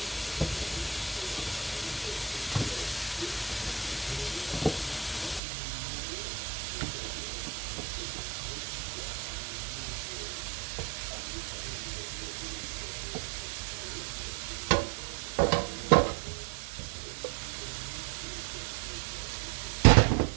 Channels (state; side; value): drops out; left; at 5.4 s